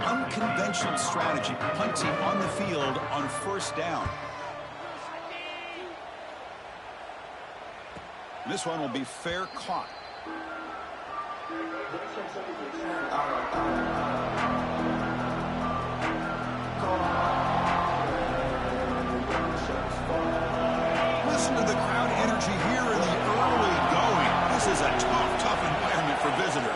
strategy, punting on the field on first down. This one will be fair caught. Listen to the crowd energy here in the early going. This is a tough environment for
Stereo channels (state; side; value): identical; both; correlation 1.00